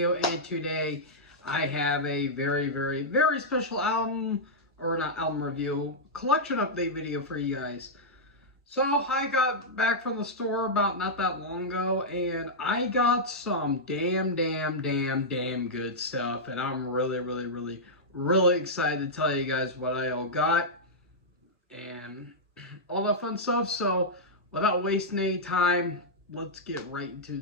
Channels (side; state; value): both; normal; correlation -0.08